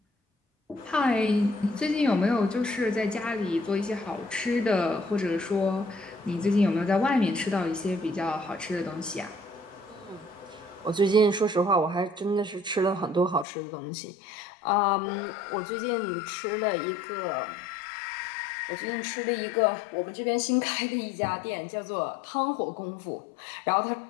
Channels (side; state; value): right; drops out; at 13.5 s